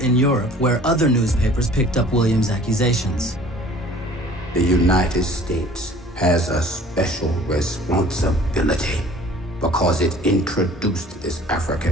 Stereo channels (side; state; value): both; normal; correlation 0.50